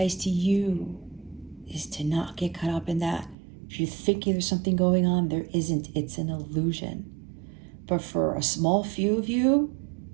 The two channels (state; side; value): drops out; left; at 3.4 s